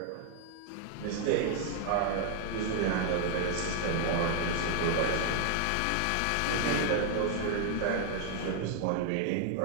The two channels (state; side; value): different; both; correlation 0.00